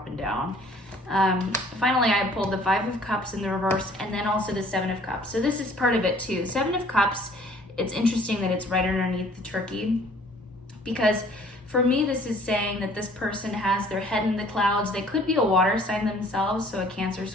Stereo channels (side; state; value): both; normal; correlation 0.55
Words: down. Finally, I pulled the Five of Cups in the reverse, and then also the Seven of Cups. So this is part of it too. Seven of Cups, it's interesting that it's right underneath the turkey, because for me, this is saying that this person has their head in the clouds. They could be a water sign themselves, so a Cancer,